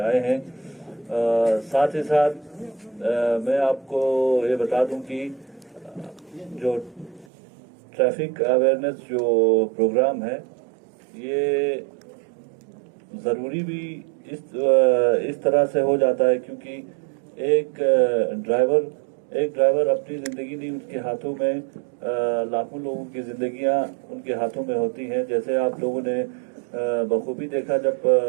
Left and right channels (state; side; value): drops out; left; at 7.2 s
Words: आए हैं। साथ ही साथ मैं आपको ये बता दूँ कि जो ट्रैफिक अवेयरनेस जो प्रोग्राम है ये ज़रूरी भी इस तरह से हो जाता है क्योंकि एक ड्राइवर अपनी ज़िंदगी नहीं, उसके हाथों में लाखों लोगों की ज़िंदगियां उनके हाथों में होती हैं। जैसे आप लोगों ने बखूबी देखा जब